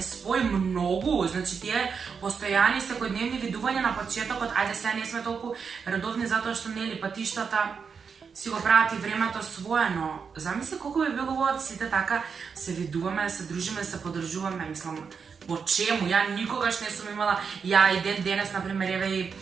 спои многу. Значи, тие постојани секојдневни видувања на почетокот, ајде сега не сме толку редовни затоа што нели патиштата си го прават и времето свое, но замисли колку би било убаво сите така се видуваме, се дружиме, се подржуваме, мислам, по чему? Ја никогаш не сум имала, ја и денес, например, еве и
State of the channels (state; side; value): quieter; left; 5.9 dB